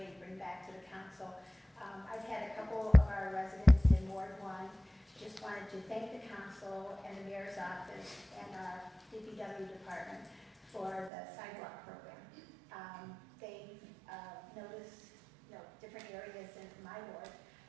bring back to the council. I've had a couple of our residents in Ward 1 just wanted to thank the council and the mayor's office and our DPW department for the sidewalk program. They've noticed different areas in my ward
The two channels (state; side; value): drops out; left; at 11.1 s